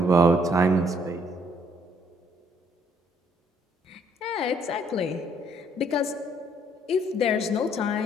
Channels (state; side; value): normal; both; correlation 0.66